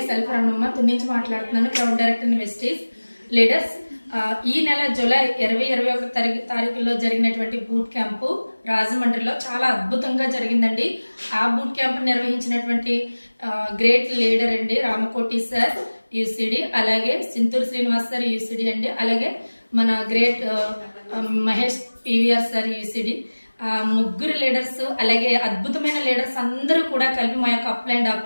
self Ramanamma నుంచి మాట్లాడుతున్నాను, క్రౌడ్ డైరెక్టర్ వెస్టీస్. లీడర్స్, ఈ నెల జూలై 20-21 తారీఖులో జరిగినటువంటి బూట్ క్యాంపు రాజమండ్రిలో చాలా అద్భుతంగా జరిగిందండి. ఆ బూట్ క్యాంప్ నిర్వహించినటువంటి గ్రేట్ లీడర్ అండి రామకోటి సార్ యూసిడి, అలాగే సింతూరు శ్రీనివాస్ సార్ యూసిడి అండి, అలాగే మన great Mahesh PVR sir UCD. ముగ్గురు లీడర్స్, అలాగే అద్భుతమైన లీడర్స్ అందరూ కూడా కలిపి మా యొక్క అప్లైన్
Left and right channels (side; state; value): both; inverted; correlation -1.00